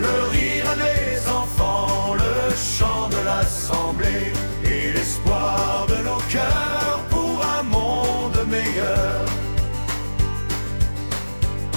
rire des enfants, le chant de l'assemblée et l'espoir de nos cœurs pour un monde meilleur.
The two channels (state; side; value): inverted; both; correlation -1.00